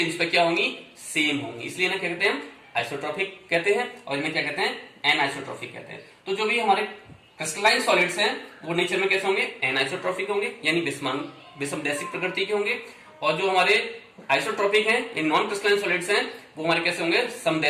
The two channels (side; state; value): both; identical; correlation 1.00